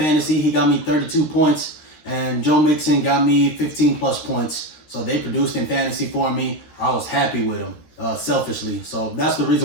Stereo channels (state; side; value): late; right; 13 ms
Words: He got me 32 points, and Joe Mixon got me 15 plus points. So they produced in fantasy for me. I was happy with them, selfishly. So that's the